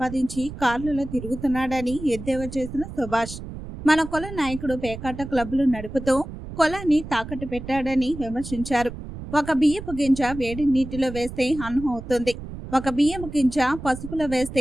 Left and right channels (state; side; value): noise; right; rumble, 11 dB below the sound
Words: కార్లలో తిరుగుతున్నాడని ఎద్దేవా చేసిన సుభాష్. మన కుల నాయకుడు పేకాట క్లబ్లు నడుపుతూ కులాన్ని తాకట్టు పెట్టాడని విమర్శించారు. ఒక బియ్యపు గింజ వేడి నీటిలో వేస్తే అన్నం అవుతుంది, ఒక బియ్యపు గింజ పసుపులో